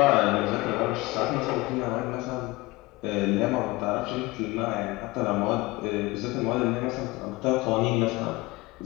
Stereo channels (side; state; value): right; quieter; 21.9 dB